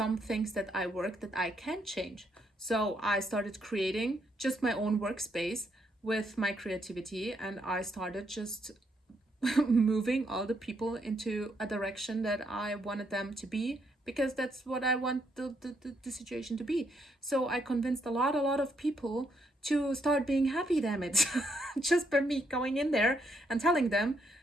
things that I work that I can change? So I started creating just my own workspace with my creativity, and I started just moving all the people into a direction that I wanted them to be, because that's what I want the situation to be. So I convinced a lot of people to start being happy, damn it. Just by me going in there and telling them,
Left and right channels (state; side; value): normal; both; correlation 0.75